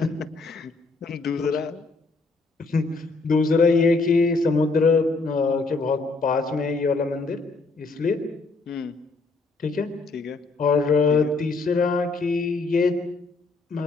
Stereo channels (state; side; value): quieter; right; 3.8 dB